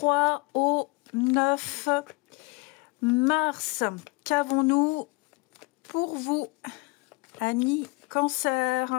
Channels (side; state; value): right; quieter; 25.9 dB